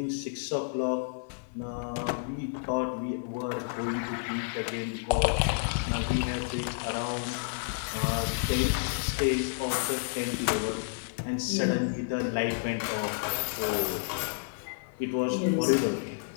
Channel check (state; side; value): silent; right; digital silence